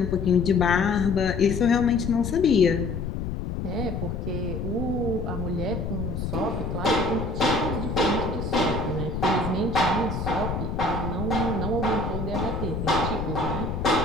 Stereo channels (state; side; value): noise; left; rumble, 4 dB below the sound